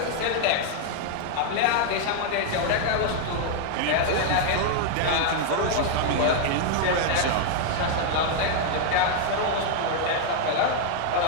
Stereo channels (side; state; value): both; different; correlation 0.00